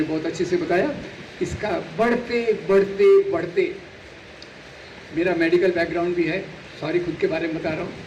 बहुत अच्छे से बताया, इसका बढ़ते बढ़ते बढ़ते, मेरा मेडिकल बैकग्राउंड भी है, सॉरी खुद के बारे में बता रहा हूँ,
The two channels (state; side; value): identical; both; correlation 1.00